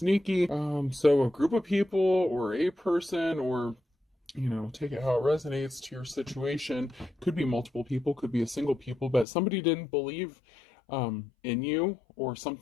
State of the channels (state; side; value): drops out; right; at 9.2 s